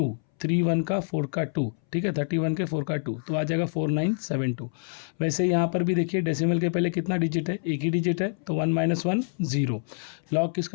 31 का 4 का 2। ठीक है, 31 के 4 का 2 तो आ जाएगा 4972। वैसे यहाँ पर भी देखिए डेसिमल के पहले कितना डिजिट है, एक ही डिजिट है, तो 1 - 1 0। लॉग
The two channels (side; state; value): right; silent; 61 dB below the other